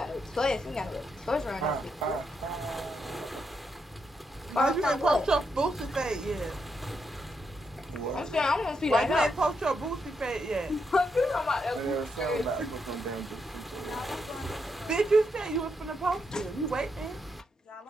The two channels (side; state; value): both; normal; correlation 0.81